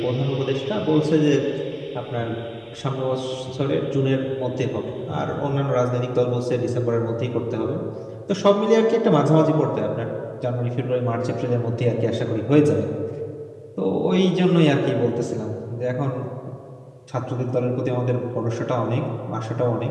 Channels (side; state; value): both; identical; correlation 1.00